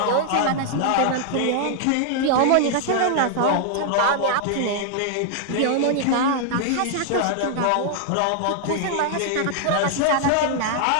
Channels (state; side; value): different; both; correlation 0.00